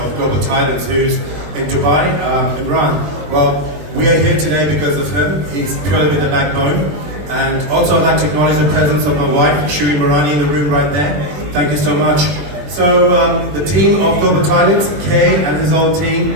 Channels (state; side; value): late; left; 21 ms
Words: Global Titans, who's in Dubai, Imran. Well, we are here today because of him. He's purely been the backbone. And also I'd like to acknowledge the presence of my wife, Shiri Marani, in the room right there. Thank you so much. So the team of Global Titans, Kay and his whole